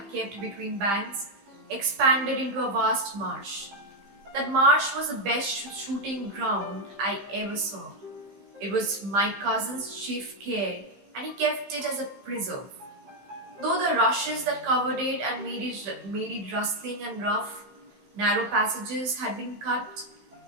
kept between banks, expanded into a vast marsh. That marsh was the best shooting ground I ever saw. It was my cousin's chief care, and he kept it as a preserve. Though the rushes that covered it and made it rustling and rough, narrow passages had been cut,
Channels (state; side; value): late; left; 15 ms